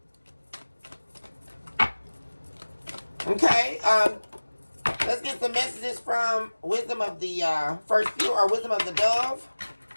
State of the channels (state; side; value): inverted; both; correlation -1.00